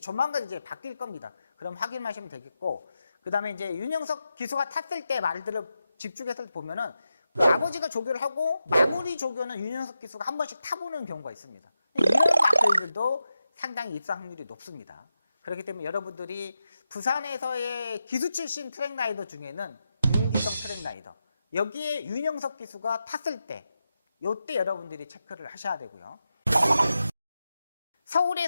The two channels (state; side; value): inverted; both; correlation -0.89